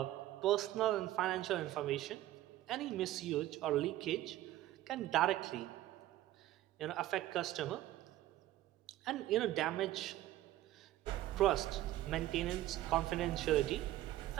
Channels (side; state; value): left; quieter; 14.6 dB